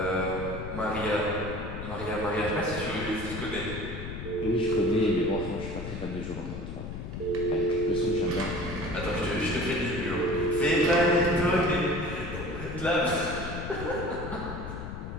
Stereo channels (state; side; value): noise; left; rumble, 7 dB below the sound